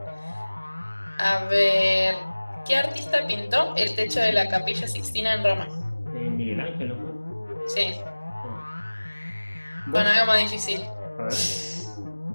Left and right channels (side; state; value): both; inverted; correlation -1.00